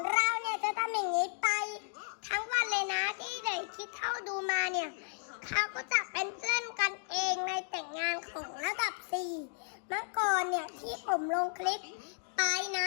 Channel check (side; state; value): right; silent; digital silence